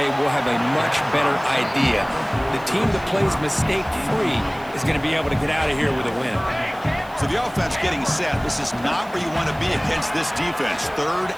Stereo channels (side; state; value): right; noise; hiss, 25 dB below the sound